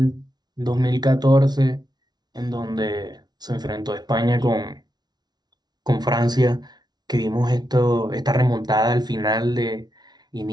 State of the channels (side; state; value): left; late; 0.19 ms